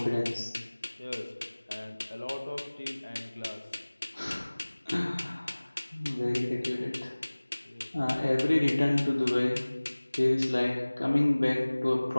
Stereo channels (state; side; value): inverted; both; correlation -1.00